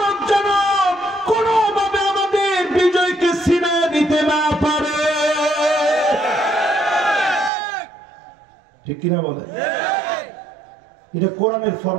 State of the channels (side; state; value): left; drops out; at 7.5 s